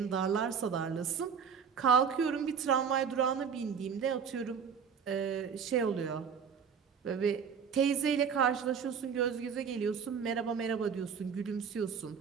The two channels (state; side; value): quieter; left; 6.7 dB